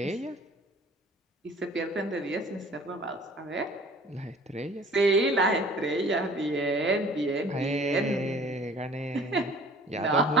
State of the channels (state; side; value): normal; both; correlation 0.49